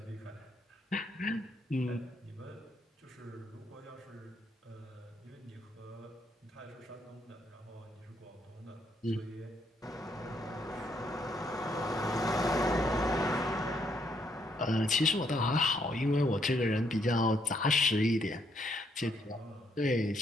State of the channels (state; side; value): normal; both; correlation 0.73